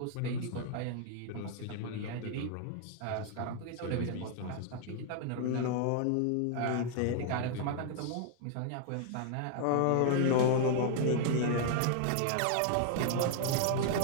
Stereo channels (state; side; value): different; both; correlation 0.00